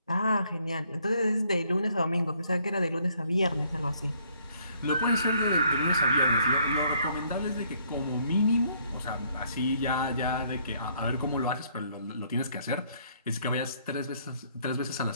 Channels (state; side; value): inverted; both; correlation -0.67